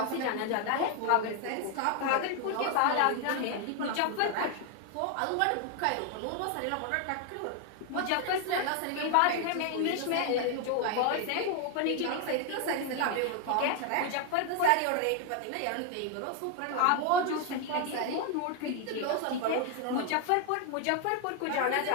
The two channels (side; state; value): both; different; correlation 0.01